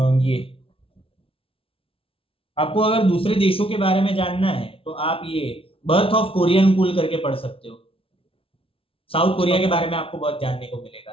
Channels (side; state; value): right; late; 0.26 ms